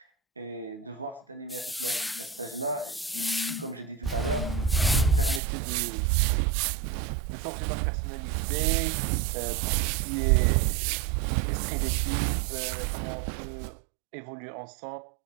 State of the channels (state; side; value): drops out; left; at 5.4 s